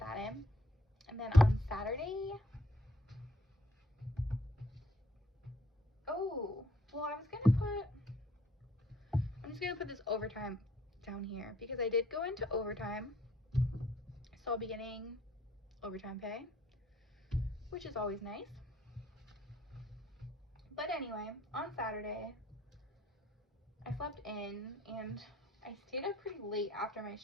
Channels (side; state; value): both; normal; correlation 0.65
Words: in. And then on Saturday, oh, well, I'm just gonna put this overtime down here because I did go into overtime, so I'll be getting overtime pay, which is always nice. But anyway, on Saturday, I slept in and I stayed up pretty late after my